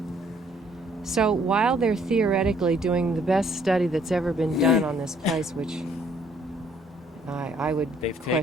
So while they're theoretically doing the best study that's ever been done on this place, which I would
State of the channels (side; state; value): both; normal; correlation 0.64